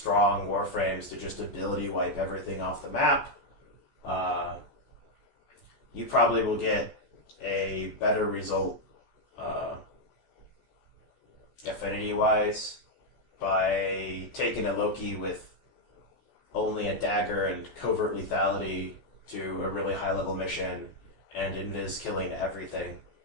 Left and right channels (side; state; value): right; late; 14 ms